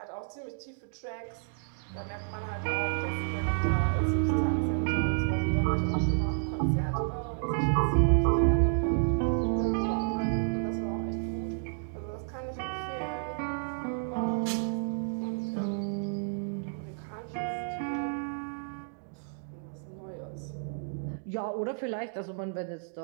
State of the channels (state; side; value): silent; left; digital silence